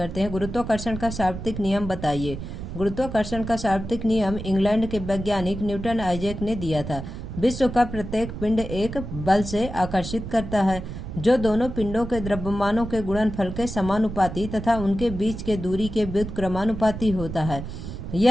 हैं। गुरुत्वाकर्षण का सार्वत्रिक नियम बताइए। गुरुत्वाकर्षण का सार्वत्रिक नियम इंग्लैंड के वैज्ञानिक न्यूटन आइजैक ने दिया था। विश्व का प्रत्येक पिंड एक बल से आकर्षित करता है जो दोनों पिंडों के द्रव्यमानों के गुणनफल के समानुपाती तथा उनके बीच के दूरी के व्युत्क्रमानुपाती होता है।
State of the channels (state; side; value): noise; right; rumble, 8 dB below the sound